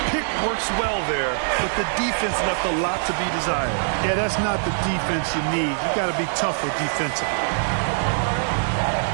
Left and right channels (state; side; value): silent; left; 63 dB below the other